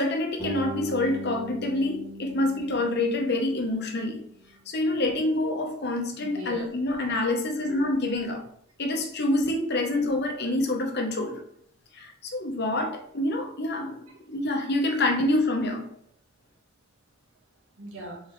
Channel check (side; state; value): both; normal; correlation 0.43